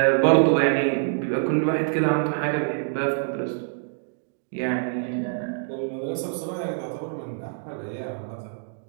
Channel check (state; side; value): silent; left; digital silence